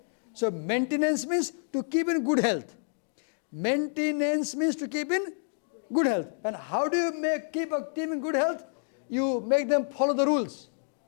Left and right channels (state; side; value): silent; right; digital silence